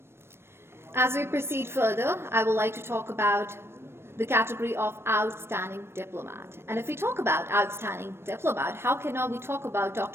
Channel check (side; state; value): left; late; 0.12 ms